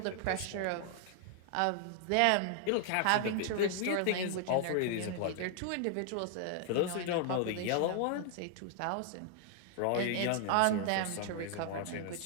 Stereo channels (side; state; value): both; different; correlation 0.00